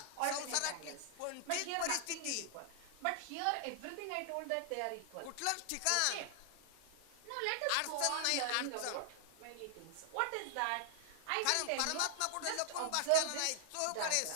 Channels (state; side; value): different; both; correlation -0.01